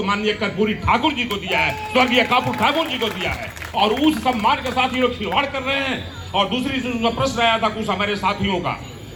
माननीय कर्पूरी ठाकुर जी को दिया है, स्वर्गीय कर्पूरी ठाकुर जी को दिया है, और उस सम्मान के साथ ये लोग खिलवाड़ कर रहे हैं। और दूसरी प्रश्न आया था कुछ हमारे साथियों का,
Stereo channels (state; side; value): identical; both; correlation 1.00